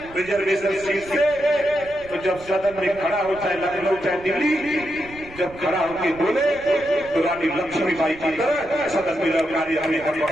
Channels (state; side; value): noise; right; rumble, 19 dB below the sound